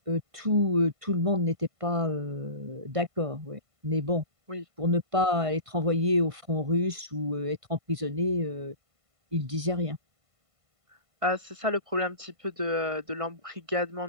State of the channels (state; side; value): late; left; 1.5 ms